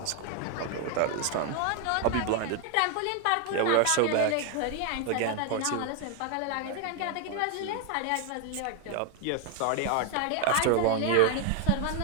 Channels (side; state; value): both; different; correlation 0.01